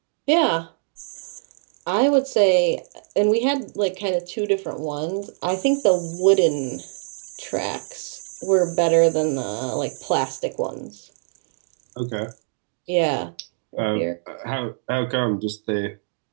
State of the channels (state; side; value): silent; left; digital silence